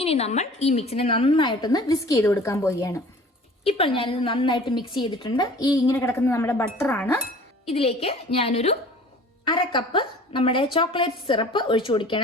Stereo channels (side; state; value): both; normal; correlation 0.46